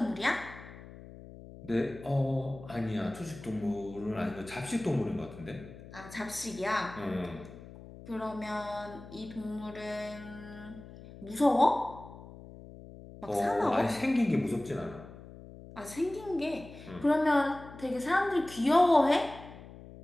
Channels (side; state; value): left; noise; hum, 16 dB below the sound